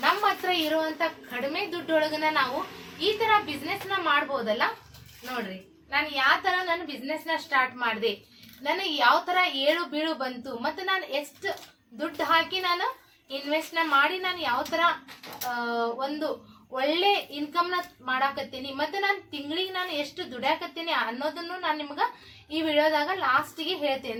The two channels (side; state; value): both; identical; correlation 1.00